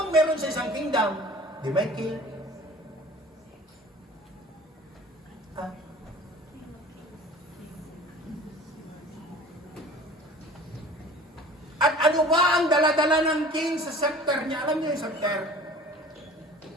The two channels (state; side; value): normal; both; correlation 0.44